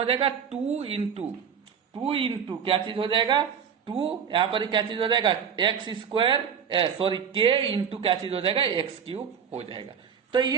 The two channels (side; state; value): left; quieter; 7.5 dB